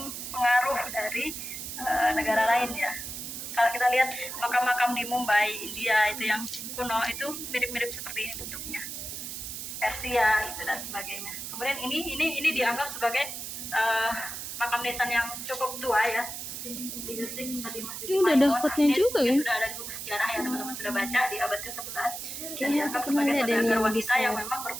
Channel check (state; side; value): noise; right; hiss, 7 dB below the sound